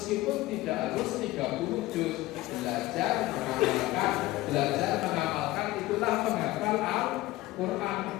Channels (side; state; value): right; quieter; 17.8 dB